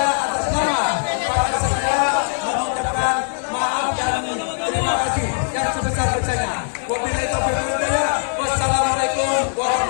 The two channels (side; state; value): right; silent; 65 dB below the other